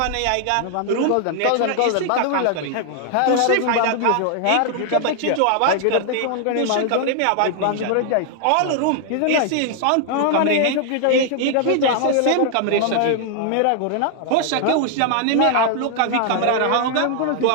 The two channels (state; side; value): different; both; correlation 0.00